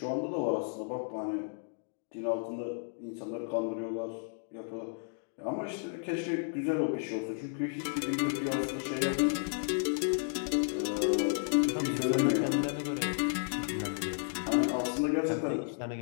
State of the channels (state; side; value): silent; right; digital silence